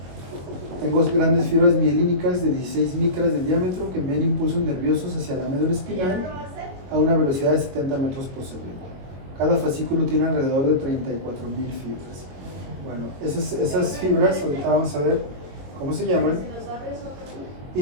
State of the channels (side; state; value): left; late; 22 ms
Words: tengo grandes fibras mielínicas de 16 micras de diámetro que envían impulsos nerviosos hacia la médula espinal a una velocidad de 70 metros por segundo. Cada fascículo tiene alrededor de 34,000 fibras. Bueno, esas fibras, ahorita vamos a ver cómo se llaman,